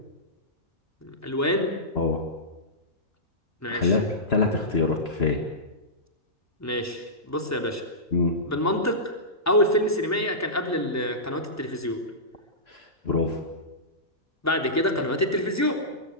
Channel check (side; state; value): both; normal; correlation -0.18